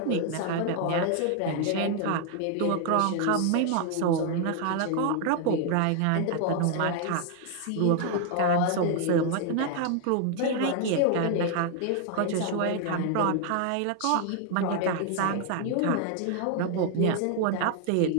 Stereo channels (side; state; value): both; different; correlation 0.00